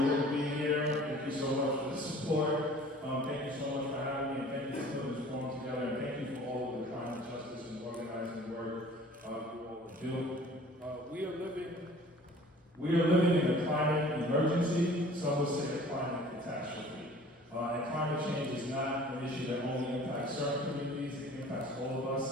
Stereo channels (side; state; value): both; normal; correlation 0.48